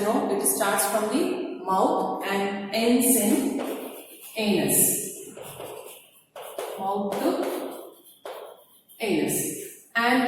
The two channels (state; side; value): identical; both; correlation 1.00